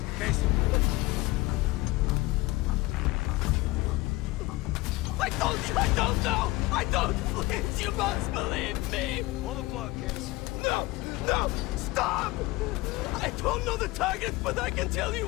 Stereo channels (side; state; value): right; quieter; 20.7 dB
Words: Case. I told you I don't know. I don't. Please, you must believe me. Pull the plug, Case. No, no, stop! I don't know the target, but I can tell you